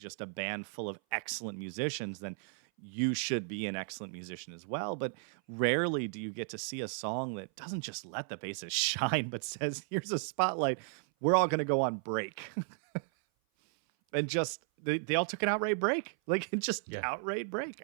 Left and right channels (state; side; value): silent; left; 55 dB below the other